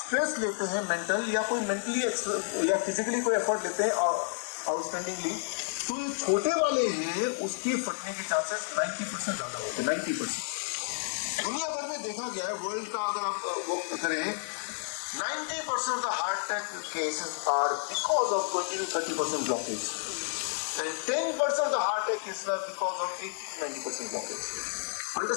लेते हैं मेंटल या कोई मेंटली या फिजिकली कोई एफर्ट लेते हैं आउटस्टैंडिंगली, तो ये छोटे वाले हैं, उसके फटने के चांसेस 90% ज्यादा होते हैं, 90%। दुनिया भर में देखा गया है, वर्ल्ड का अगर आप वो करें, 90% of the heart attack cases are because of 20 to 30% blockage, and 10% of the heart attack cases are because of 80-90% blockage.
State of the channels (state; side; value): silent; right; digital silence